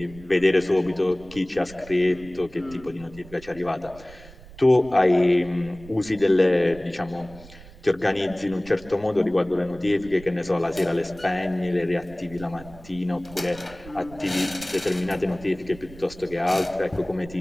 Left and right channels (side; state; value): right; noise; rumble, 19 dB below the sound